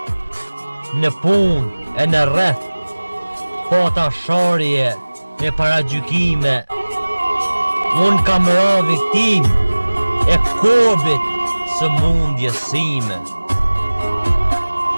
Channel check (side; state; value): both; inverted; correlation -1.00